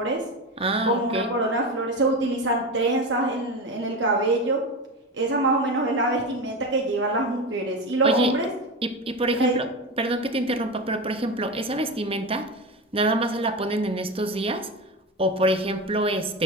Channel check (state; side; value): normal; both; correlation 0.22